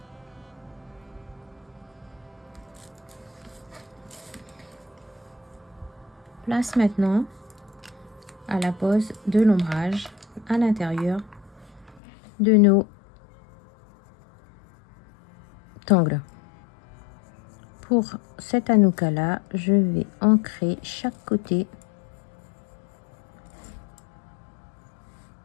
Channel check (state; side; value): drops out; right; at 12.0 s